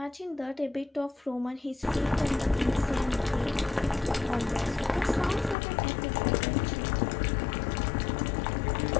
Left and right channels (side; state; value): right; drops out; at 5.6 s